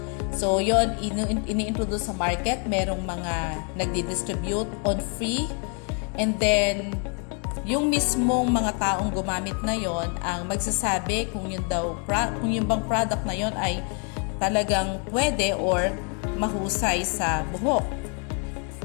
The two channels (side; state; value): right; quieter; 38.7 dB